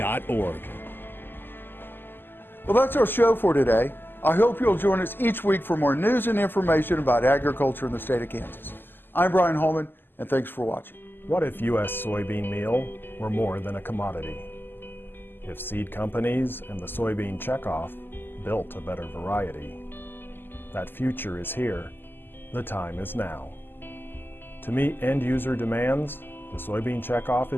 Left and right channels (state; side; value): late; right; 0.096 ms